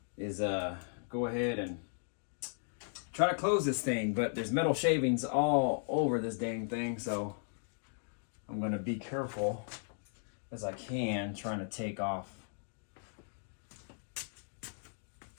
is go ahead and try to close this thing, but there's metal shavings all over this dang thing, so I'm going to be careful as I can, trying to take off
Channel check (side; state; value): right; silent; digital silence